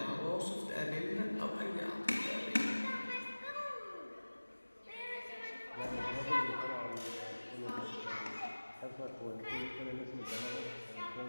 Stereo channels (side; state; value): both; inverted; correlation -1.00